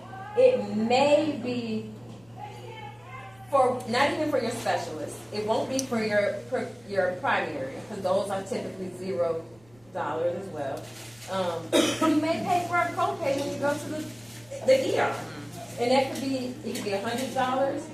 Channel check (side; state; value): right; noise; rumble, 30 dB below the sound